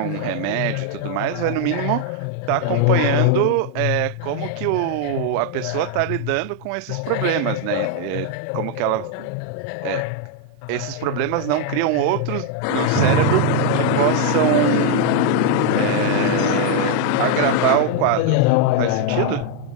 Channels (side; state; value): both; different; correlation 0.00